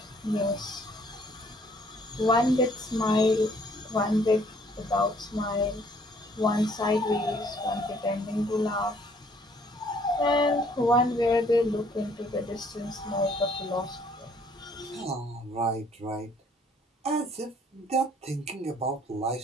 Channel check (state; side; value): normal; both; correlation 0.62